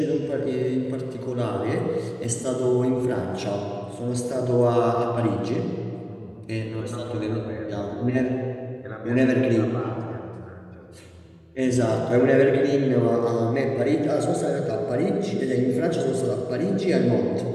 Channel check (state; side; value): identical; both; correlation 1.00